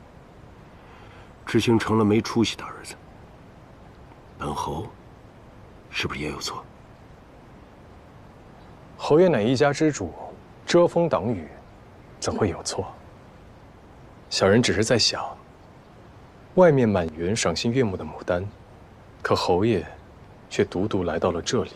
知行成了没出息的儿子，本侯是不是也有错？侯爷乃一家之主，遮风挡雨，怎会有错？小人只是在想，外面满园赏心悦目的牡丹，可侯爷却独独来到了这里。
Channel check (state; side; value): identical; both; correlation 1.00